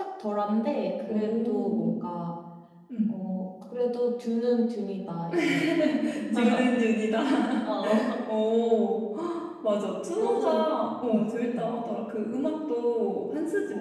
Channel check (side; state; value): both; identical; correlation 1.00